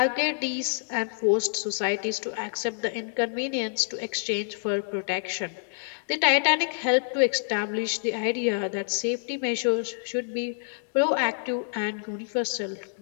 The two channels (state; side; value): silent; right; digital silence